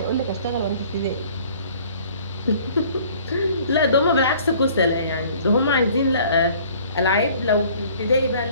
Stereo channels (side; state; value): both; inverted; correlation -0.53